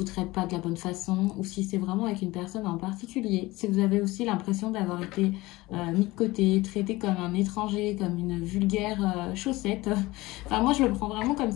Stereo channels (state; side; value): quieter; right; 20.1 dB